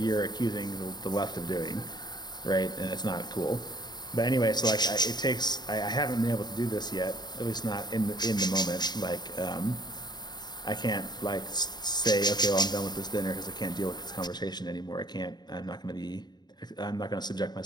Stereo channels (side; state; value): right; late; 0.20 ms